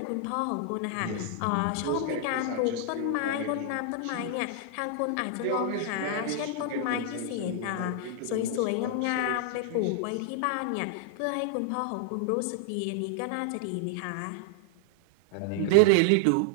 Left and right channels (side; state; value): both; different; correlation 0.00